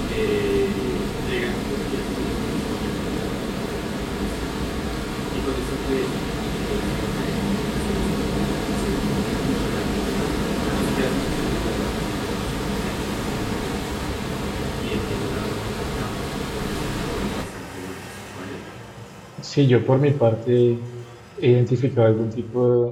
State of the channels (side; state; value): both; identical; correlation 1.00